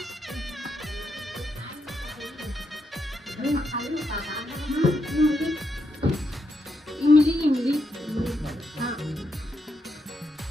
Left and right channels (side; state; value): both; normal; correlation 0.81